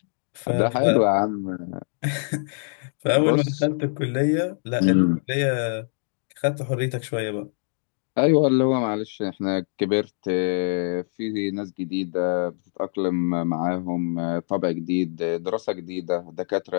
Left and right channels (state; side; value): silent; right; digital silence